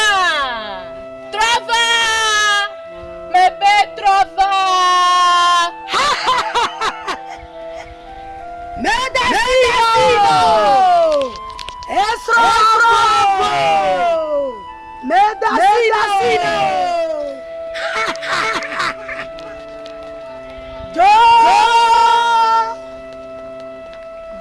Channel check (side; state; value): both; identical; correlation 1.00